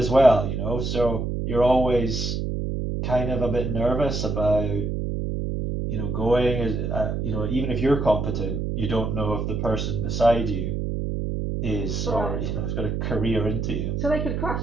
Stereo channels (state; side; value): noise; right; hum, 2 dB below the sound